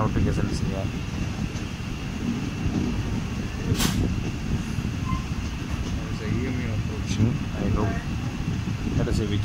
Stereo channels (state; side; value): identical; both; correlation 1.00